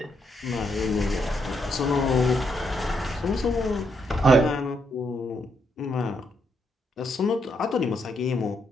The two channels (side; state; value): both; normal; correlation 0.77